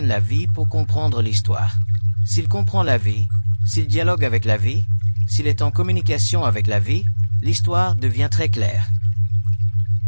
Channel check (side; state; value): both; inverted; correlation -1.00